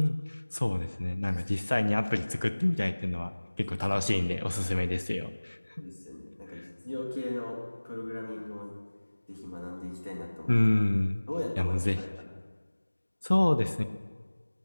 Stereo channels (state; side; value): inverted; both; correlation -1.00